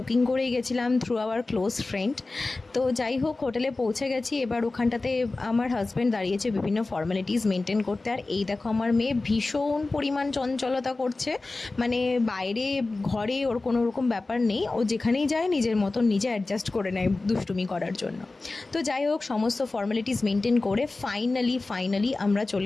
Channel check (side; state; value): right; quieter; 3.3 dB